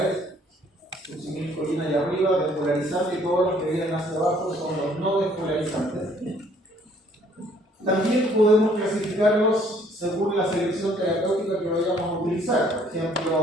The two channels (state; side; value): normal; both; correlation 0.61